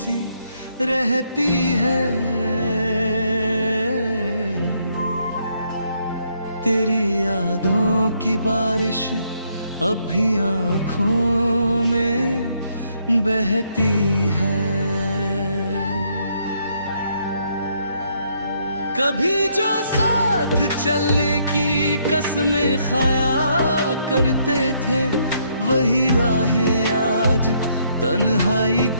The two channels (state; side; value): inverted; both; correlation -0.72